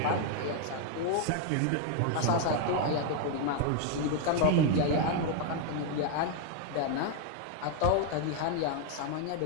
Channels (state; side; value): different; both; correlation 0.00